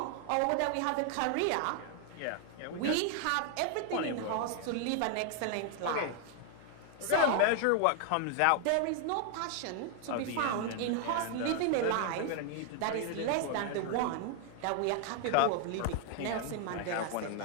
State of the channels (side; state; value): both; different; correlation 0.00